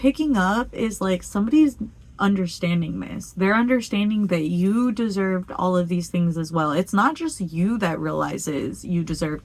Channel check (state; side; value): identical; both; correlation 1.00